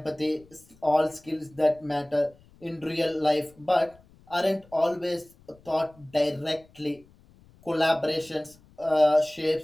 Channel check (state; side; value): noise; left; rumble, 28 dB below the sound